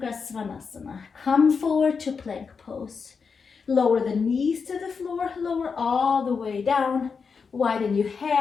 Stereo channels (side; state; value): right; quieter; 5.5 dB